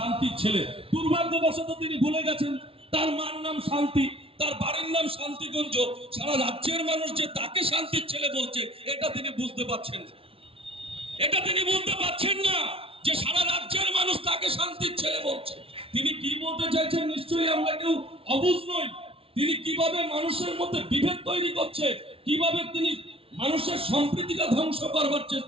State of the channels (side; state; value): left; late; 0.26 ms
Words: ছেলে। দুর্ভাগ্যবশত তিনি ভুলে গেছেন তার মার নাম শান্তি, তার বাড়ির নাম শান্তিগঞ্জ। সারা রাজ্যের মানুষ যে তাকে শান্তির ছেলে বলছে এটা তিনি বুঝতে পারছেন না, এটা তিনি বুঝতে পারছেন না যে সারা রাজ্যের মানুষ তাকে শান্তির ছেলে বলছে। তিনি কি বলতে চাইছেন নিশ্চয়ই আমরা কেউ অবুঝ নই। তিনি কিভাবে মানুষের মধ্যে বিভেদ তৈরি করছে, কিভাবে তিনি মানুষের সম্প্রীতিটা ধ্বংস করবার